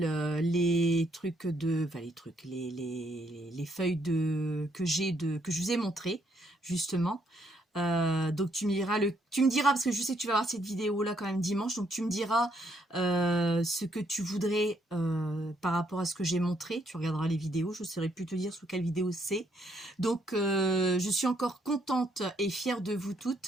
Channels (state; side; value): normal; both; correlation 0.72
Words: les trucs de, enfin les feuilles que je vous ai montré justement. Donc tu me diras parce que je sais que tu vas voir cette vidéo là quand même dimanche, donc tu me diras ce que tu voudrais par rapport à ce que j'ai montré. Tu regarderas les vidéos, je ne saurais plus te dire sous quelle vidéo c'est. Donc je suis encore contente et fière de vous